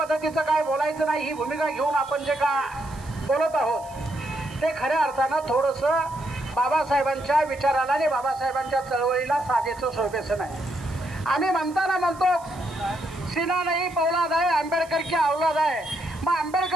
काय बोलायचं नाही, ही भूमिका घेऊन आपण जे का बोलत आहोत ते खऱ्या अर्थानं थोडंसं बाबासाहेबांच्या विचाराला आणि बाबासाहेबांच्या चळवळीला साजेचं शोभेचं नाही. आम्ही म्हणतो सीना नाही पौलाद आहे, आंबेडकर की औलाद आहे. मग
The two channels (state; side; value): noise; right; hiss, 23 dB below the sound